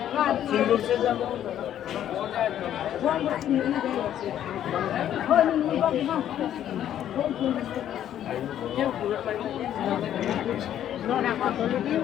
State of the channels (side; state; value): right; quieter; 10.9 dB